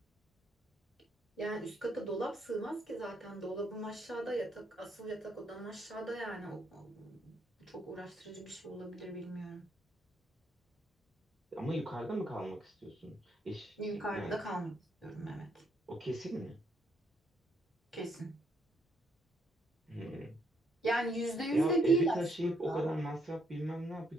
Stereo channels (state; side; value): normal; both; correlation 0.72